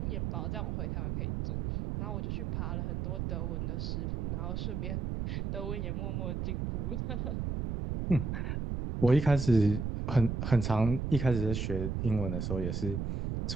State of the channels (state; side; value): noise; right; rumble, 2 dB below the sound